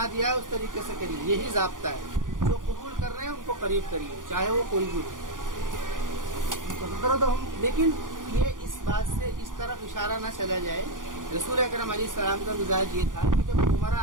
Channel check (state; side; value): late; left; 0.89 ms